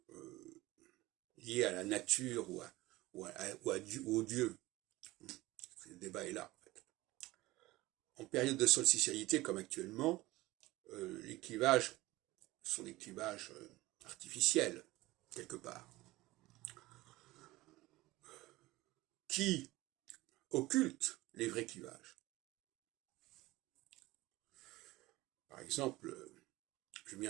liés à la nature ou au Dieu. Le débat est là. En fait. En période de solsticialité comme actuellement, les clivages sont des clivages artificiels, quelque part, qui occultent les vrais clivages. Par exemple,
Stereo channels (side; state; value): left; quieter; 19.1 dB